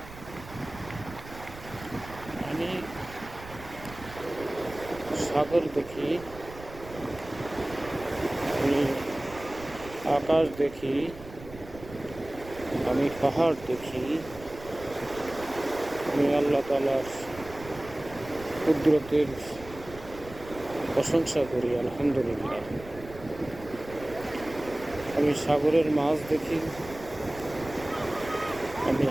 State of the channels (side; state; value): right; noise; rumble, 16 dB below the sound